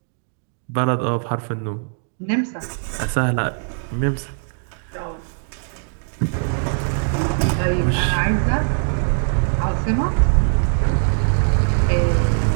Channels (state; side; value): silent; left; digital silence